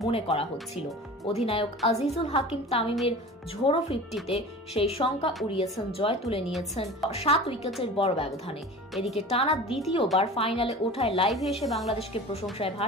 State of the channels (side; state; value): both; normal; correlation 0.37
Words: মনে করা হচ্ছিল। অধিনায়ক আজিজুল হাকিম তামিমের ঝোড়ো 50-তে সেই শঙ্কা উড়িয়েছেন, জয় তুলে নিয়েছেন 7 উইকেটের বড় ব্যবধানে। এদিকে টানা দ্বিতীয়বার ফাইনালে ওঠায় লাইভে এসে বাংলাদেশকে প্রশংসায়